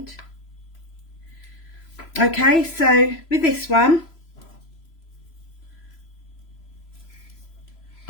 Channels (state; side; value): late; right; 3.0 ms